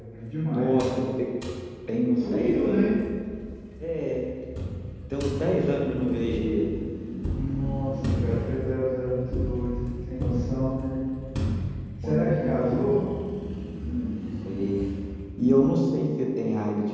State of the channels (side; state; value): both; identical; correlation 1.00